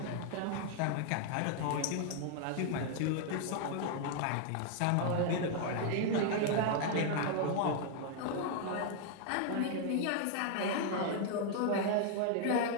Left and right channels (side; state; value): both; different; correlation 0.00